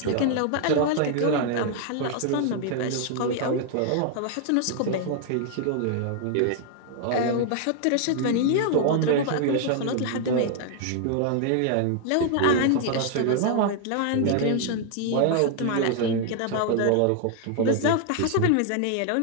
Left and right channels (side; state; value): both; different; correlation 0.00